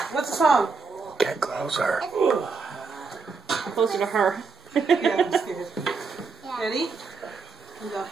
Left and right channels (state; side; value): quieter; left; 4.6 dB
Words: What's the song? Get closer. Closer to her. Yeah, I'm scared. Yeah. Ready? We go,